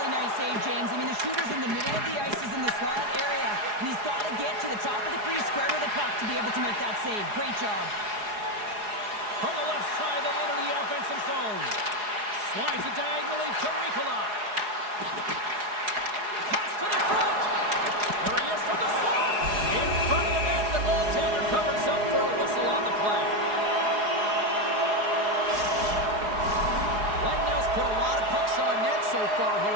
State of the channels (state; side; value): late; left; 4.8 ms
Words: nice save, James. I mean, the shooter's in the middle of the ice. He's in the slot area. And he's got to get to the top of the crease, square to the puck to be able to make that save. Great job. From the left side, they enter the offensive zone. Slides it diagonally to Ricola. Pass to the front. There he is from the slot. In front of the net, the goaltender covers up for a whistle on the play. Lightnow's put a lot of pucks on net so far here